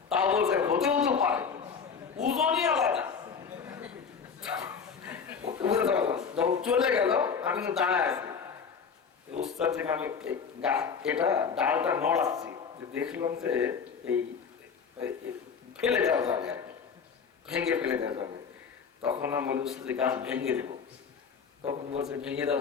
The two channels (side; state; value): right; quieter; 6.2 dB